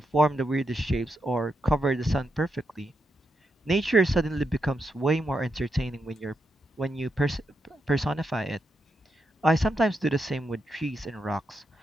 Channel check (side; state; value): both; normal; correlation 0.84